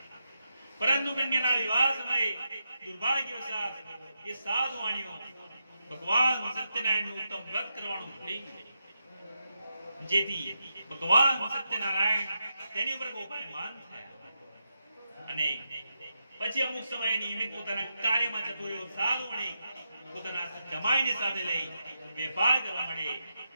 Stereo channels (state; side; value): inverted; both; correlation -0.85